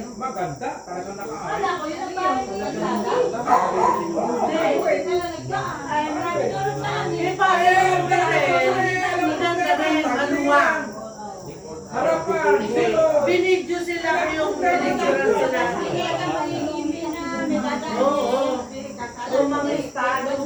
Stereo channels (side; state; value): both; identical; correlation 1.00